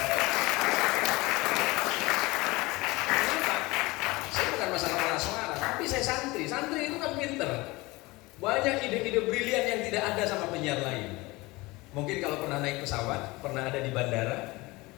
Masalah malah suara, tapi saya santri. Santri itu kan pinter. Banyak ide-ide brilian yang tidak ada sama penyiar lain. Mungkin kalau pernah naik pesawat, pernah ada di bandara,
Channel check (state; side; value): quieter; right; 22.2 dB